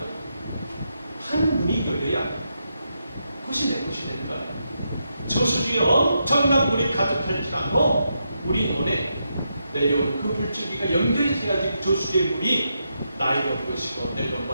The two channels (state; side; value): inverted; both; correlation -0.83